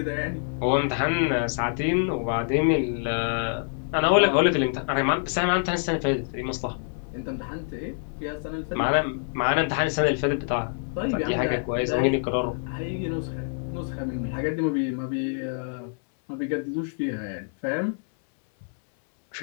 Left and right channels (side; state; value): right; silent; 61 dB below the other